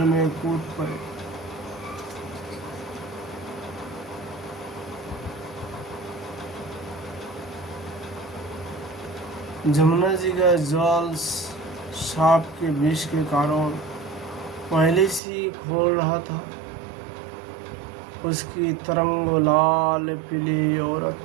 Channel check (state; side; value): drops out; left; at 15.2 s